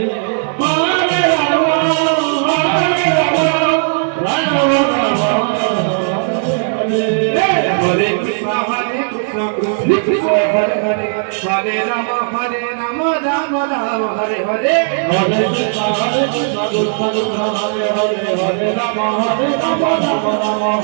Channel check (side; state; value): left; silent; digital silence